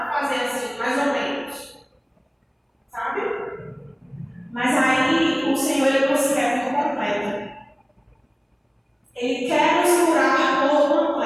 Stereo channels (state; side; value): identical; both; correlation 1.00